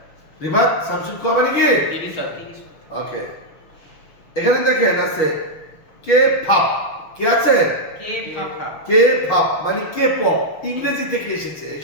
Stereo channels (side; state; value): right; late; 6.7 ms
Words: রিভাত সামশিব খোয়া মানে কি? 30 অধ্যায়। ওকে। এখানে দেখেন আছে কে ফাপ। কি আছে? কে ফাফা। কে ফাপ মানে কে পপ। ইংরেজি থেকে এসেছে। এই